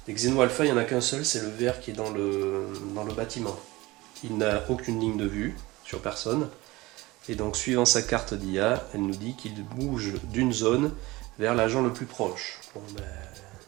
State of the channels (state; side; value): quieter; left; 20.7 dB